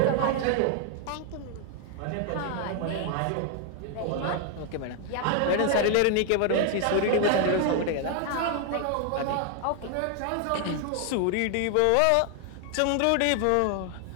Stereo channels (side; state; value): both; different; correlation 0.00